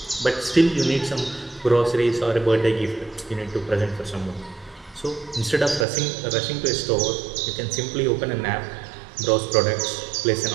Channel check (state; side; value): drops out; left; at 5.9 s